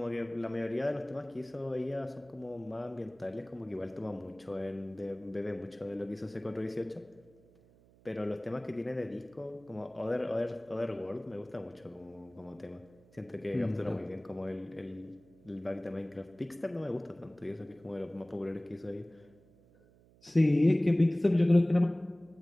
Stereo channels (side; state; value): right; noise; hum, 27 dB below the sound